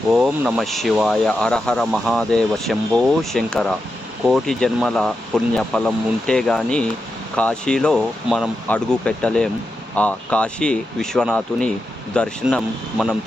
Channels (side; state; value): both; normal; correlation 0.88